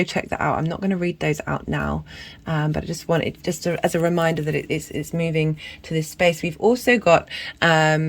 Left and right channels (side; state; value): both; identical; correlation 1.00